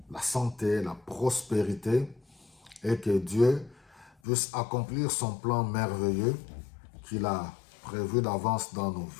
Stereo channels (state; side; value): drops out; right; at 4.1 s